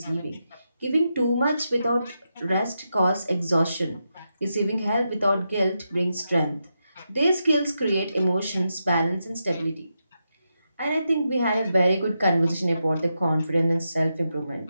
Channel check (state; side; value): inverted; both; correlation -0.86